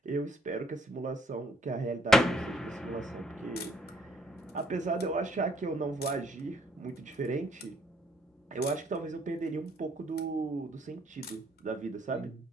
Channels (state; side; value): normal; both; correlation 0.66